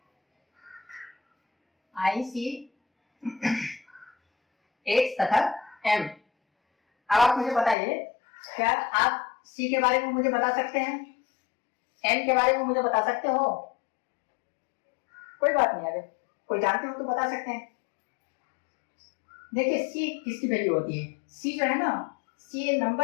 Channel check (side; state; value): right; drops out; at 7.8 s